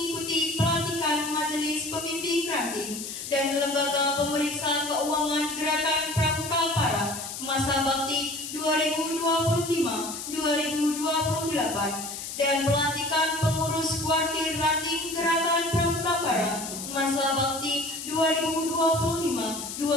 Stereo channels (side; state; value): left; noise; hiss, 8 dB below the sound